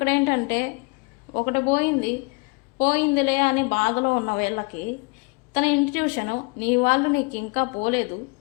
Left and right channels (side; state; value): right; quieter; 29.9 dB